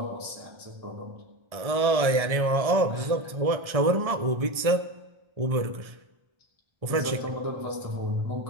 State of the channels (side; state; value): left; late; 1.7 ms